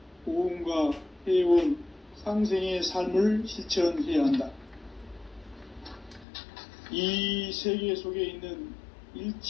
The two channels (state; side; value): drops out; right; at 6.2 s